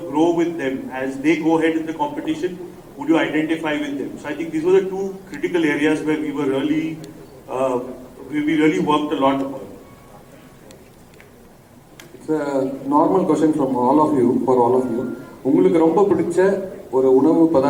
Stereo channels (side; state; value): both; identical; correlation 1.00